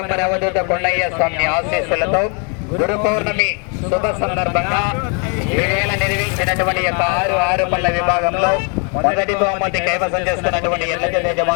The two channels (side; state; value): right; quieter; 37.0 dB